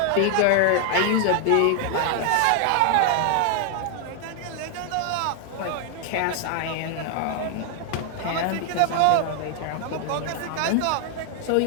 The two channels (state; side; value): different; both; correlation 0.00